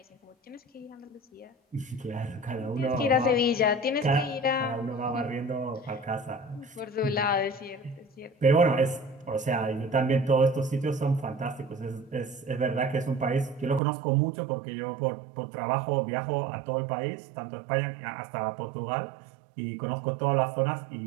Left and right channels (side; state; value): left; drops out; at 13.8 s